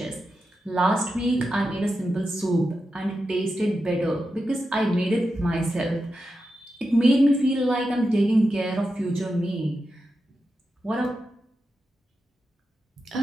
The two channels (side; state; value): both; normal; correlation 0.89